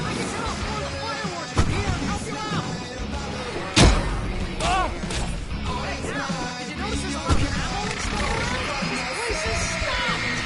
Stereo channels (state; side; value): identical; both; correlation 1.00